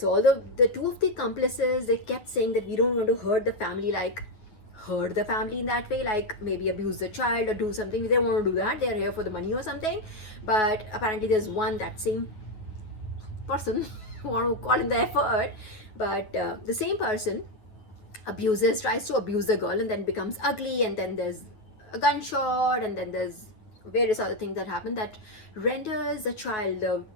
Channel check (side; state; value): right; late; 9.4 ms